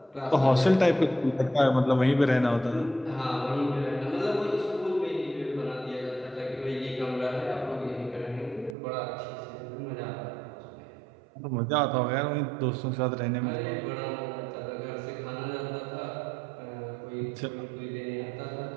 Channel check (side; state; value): left; drops out; at 8.8 s